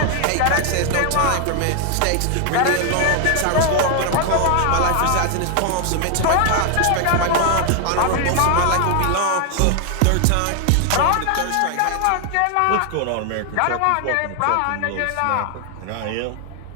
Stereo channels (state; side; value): different; both; correlation 0.00